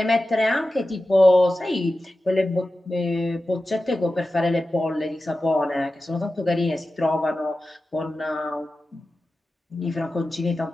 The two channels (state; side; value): normal; both; correlation 0.94